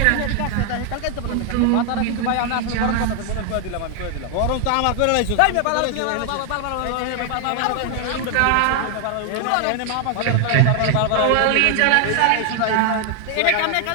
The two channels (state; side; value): different; both; correlation 0.00